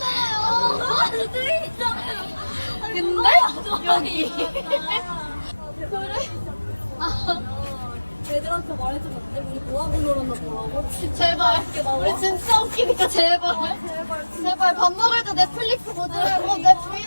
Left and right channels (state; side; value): inverted; both; correlation -1.00